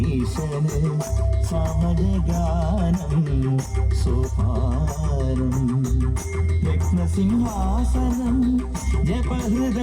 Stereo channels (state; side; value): identical; both; correlation 1.00